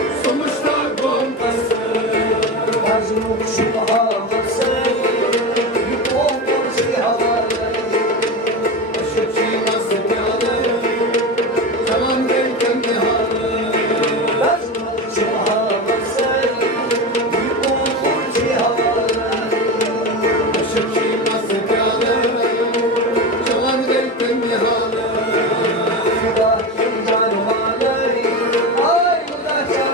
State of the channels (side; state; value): both; normal; correlation 0.22